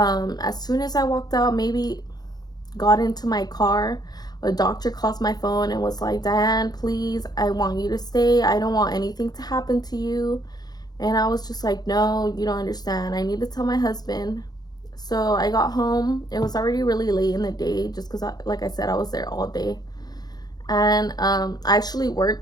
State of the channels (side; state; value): right; late; 0.19 ms